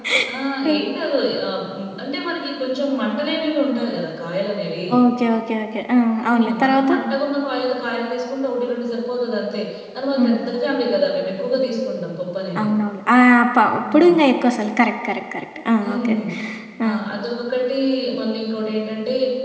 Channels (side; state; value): both; identical; correlation 1.00